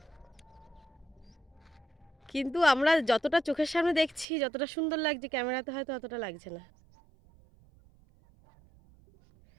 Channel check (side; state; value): left; drops out; at 4.2 s